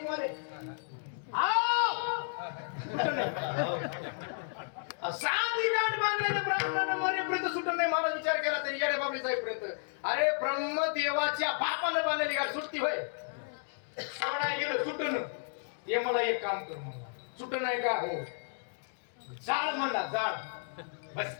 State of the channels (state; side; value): silent; right; digital silence